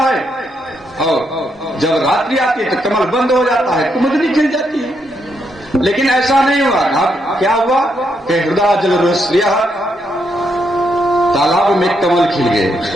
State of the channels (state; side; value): normal; both; correlation 0.78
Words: और जब रात्रि आती है तो कमल बंद हो जाता है, कुमुदनी खिल जाती है। लेकिन ऐसा नहीं हुआ। अब क्या हुआ कि हृदय जलरुह तालाब में कमल खिल गए।